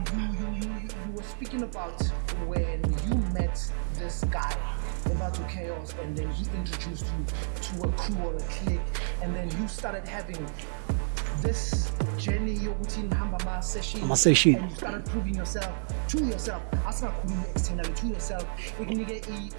you were speaking about when you met this guy Ebato Chaos, and then he introduced you to a crew or a clique, and then you started having this journey yokuthi nihamba ama session, and you started proving yourself to yourself, asingakhulumi externally, to yourself, ikunike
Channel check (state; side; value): silent; left; digital silence